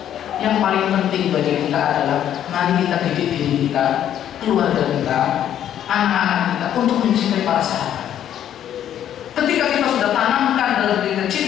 Yang paling penting bagi kita adalah mari kita didik diri kita, keluarga kita, anak-anak kita untuk mencintai para sahabat. Ketika kita sudah tanamkan dalam diri kita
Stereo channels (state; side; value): quieter; right; 10.5 dB